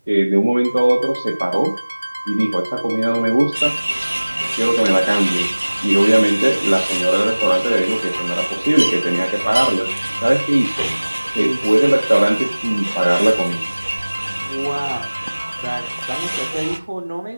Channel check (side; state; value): both; inverted; correlation -1.00